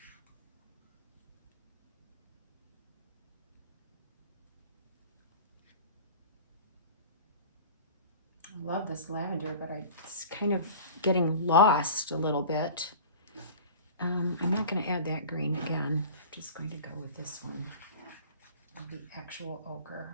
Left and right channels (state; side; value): inverted; both; correlation -0.40